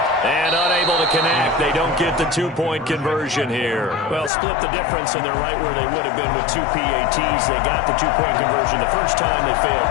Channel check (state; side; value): drops out; right; at 4.3 s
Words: And unable to connect. They don't get the two-point conversion here. Well, split the difference, and they're right where they would have been with two PATs. They got the two-point conversion the first time. They failed